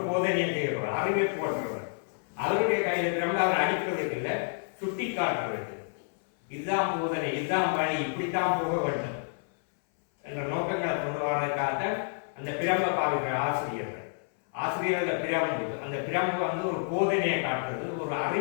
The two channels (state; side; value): silent; right; 58 dB below the other